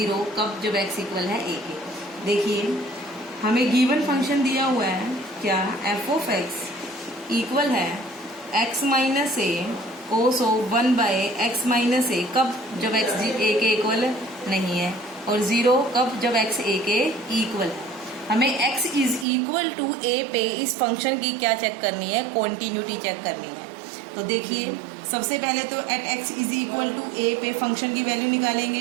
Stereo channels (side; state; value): left; drops out; at 19.2 s